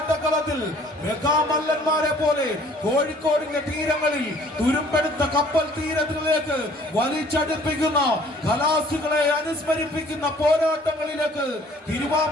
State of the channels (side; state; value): both; normal; correlation 0.55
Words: മെഗാമല്ലന്മാരെ പോലെ കോഴിക്കോടിന്റെ തീരങ്ങളിൽ തുരുമ്പെടുത്ത കപ്പൽ തീരത്തിലേക്ക് വലിച്ചടുപ്പിക്കുന്ന കലാസുകളെ അനുസ്മരിപ്പിക്കുന്ന പോരാട്ടങ്ങളിലേക്ക്